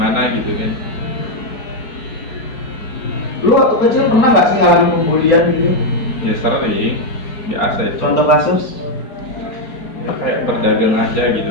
gitu kan. Lu waktu kecil pernah nggak sih ngalamin pembulian gitu? Ya sering, biasa itu. Contoh kasus? Ya kayak berdagang aja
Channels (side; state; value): right; late; 4.8 ms